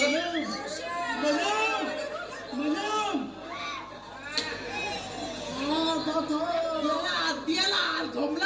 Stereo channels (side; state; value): both; identical; correlation 1.00